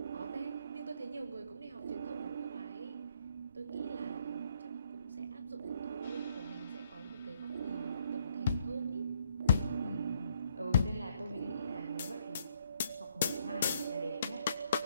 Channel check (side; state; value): both; inverted; correlation -0.71